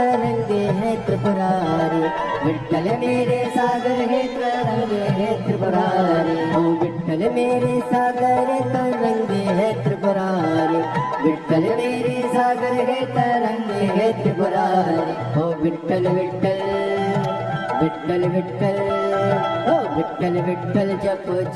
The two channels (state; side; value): identical; both; correlation 1.00